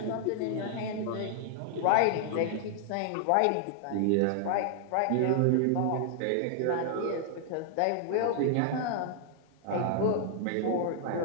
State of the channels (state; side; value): different; both; correlation -0.01